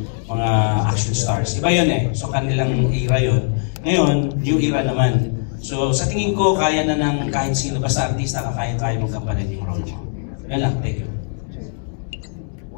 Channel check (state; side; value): silent; right; 65 dB below the other